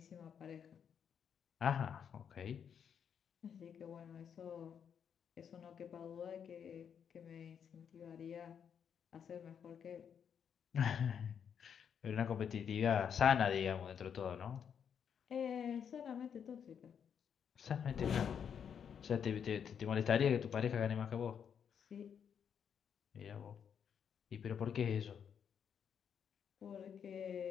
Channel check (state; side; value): quieter; right; 7.7 dB